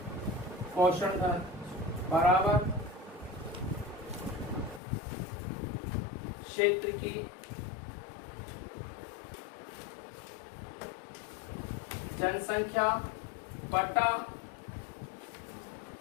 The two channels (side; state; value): right; drops out; at 4.8 s